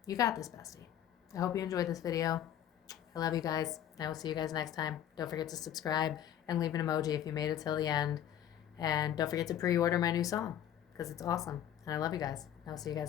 You got this, bestie. I hope you enjoyed this video. I love you guys. I will see you guys next time. Don't forget to subscribe and leave an emoji if you made it till the end. And don't forget to pre-order my new song because it's awesome. And I love you guys. I will see you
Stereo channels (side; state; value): right; quieter; 10.6 dB